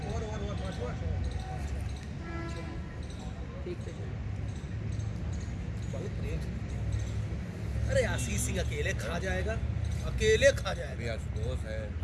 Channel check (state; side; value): identical; both; correlation 1.00